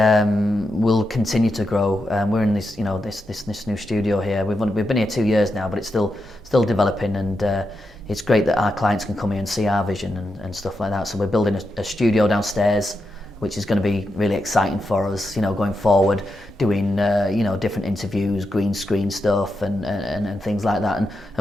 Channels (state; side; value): normal; both; correlation 0.86